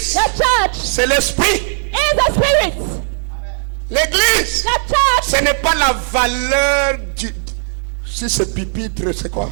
The church c'est l'esprit. is the spirit. L'église, The church ce n'est pas la valeur du... Si c'est pupitre, c'est quoi?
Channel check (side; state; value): left; silent; 69 dB below the other